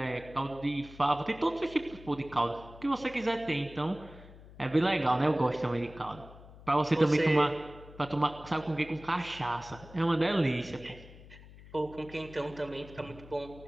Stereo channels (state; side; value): noise; left; hum, 19 dB below the sound